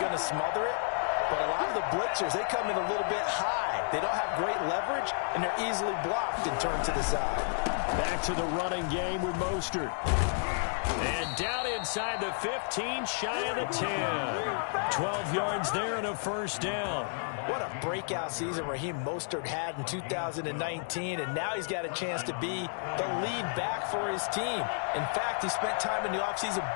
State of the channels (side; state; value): right; silent; digital silence